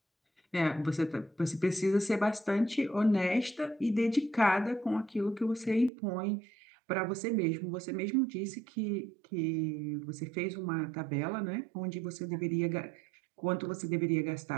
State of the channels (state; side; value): drops out; left; at 5.9 s